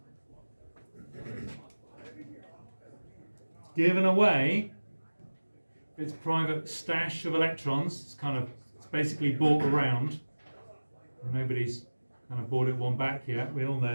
Given away its private stash of electrons. It's basically bought around. Nobody's kind of bought it one back yet. We all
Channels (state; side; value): inverted; both; correlation -1.00